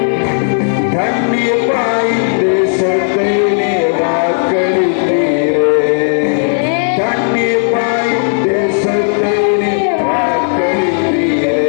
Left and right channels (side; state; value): right; silent; digital silence